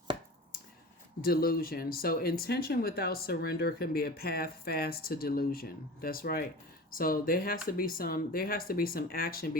delusion. So, intention without surrender can be a path fast to delusion. That's right. So there has to be some action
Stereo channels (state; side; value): normal; both; correlation 0.35